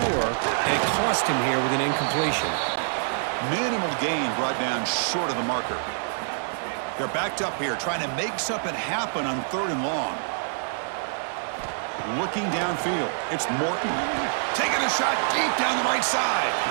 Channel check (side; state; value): left; silent; digital silence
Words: and it cost him here with an incompletion. Minimal gain brought down short of the marker. They're backed up here trying to make something happen on 3rd and long. looking downfield. It's Morton taking a shot deep down the right side.